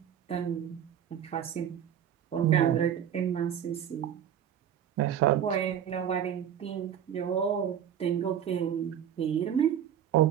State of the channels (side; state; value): left; quieter; 9.4 dB